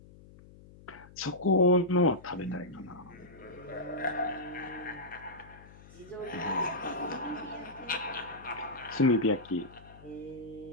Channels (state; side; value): noise; left; hum, 21 dB below the sound